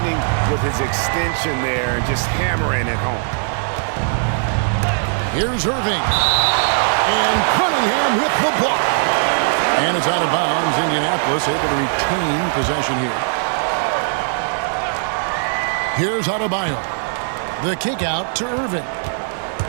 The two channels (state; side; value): silent; left; digital silence